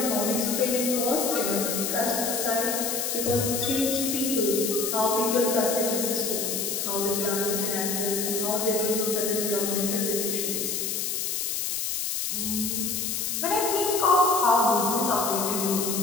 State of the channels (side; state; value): left; noise; hiss, 1 dB below the sound